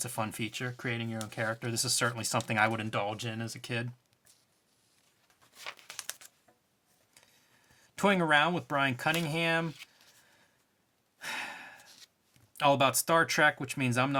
fun feature, creating your own character. This is certainly something I would indulge in as a kid. Toying Around with Brian Cunningham. All about Star Trek, which means I'm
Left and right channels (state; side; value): identical; both; correlation 1.00